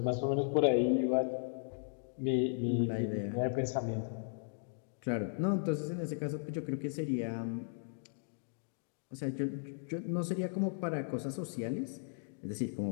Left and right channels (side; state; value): right; silent; digital silence